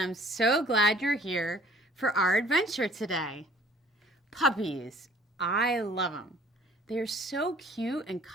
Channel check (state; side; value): normal; both; correlation 0.55